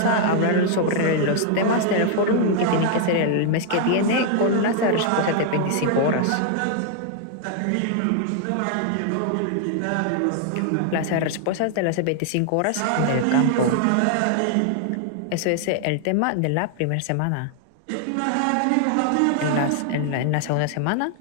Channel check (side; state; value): both; different; correlation 0.00